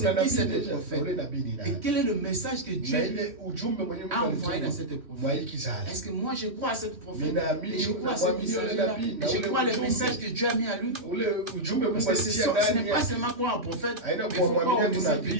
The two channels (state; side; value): late; left; 3.1 ms